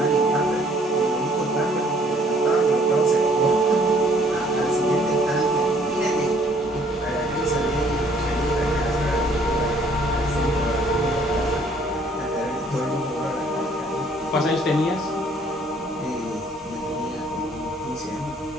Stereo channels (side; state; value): both; normal; correlation 0.61